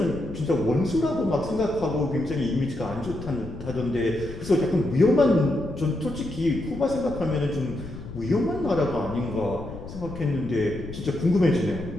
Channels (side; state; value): left; noise; rumble, 12 dB below the sound